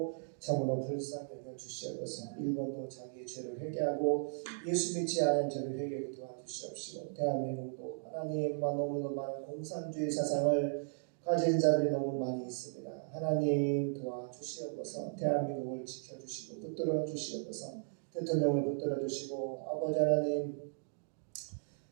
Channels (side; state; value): left; silent; digital silence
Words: 참으로 불쌍히 여겨 주시옵소서. 일본도 자기의 죄를 회개하고 예수 믿지 않은 죄를 회개하게 도와주시옵시고 대한민국도 하나님만 너무도 많은 공산주의 사상을 가진 자들이 너무 많이 있습니다. 하나님 도와주시옵소서. 대한민국을 지켜주시고 붙들어 주시옵소서. 대통령을 붙들어 주시고 아버지